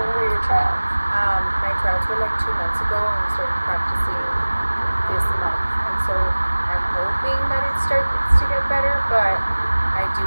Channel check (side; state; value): both; inverted; correlation -1.00